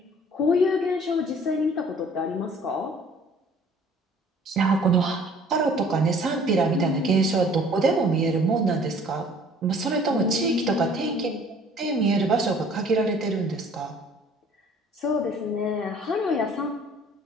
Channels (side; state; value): both; normal; correlation 0.54